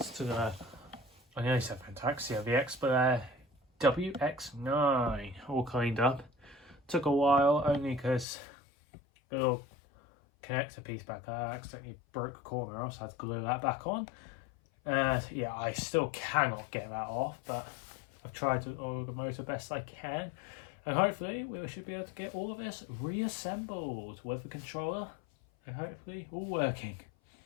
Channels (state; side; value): drops out; right; at 8.2 s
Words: to the, I nearly said Vent-Axia, the Xpelair WX9, all cleaned up. Took a while only because the little connector piece back there, I accidentally broke a corner off, so I had to glue that back on. Yeah, I still cannot get that off, but I've tried to oil the motor best I can. And hopefully we should be able to get all of this reassembled with the controller and hopefully all working.